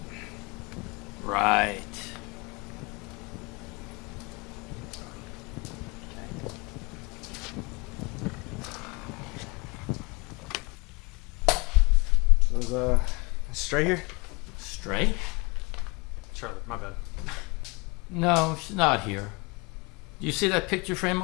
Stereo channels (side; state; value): right; quieter; 27.4 dB